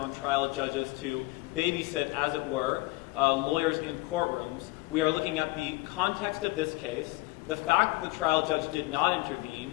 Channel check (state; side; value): quieter; right; 22.4 dB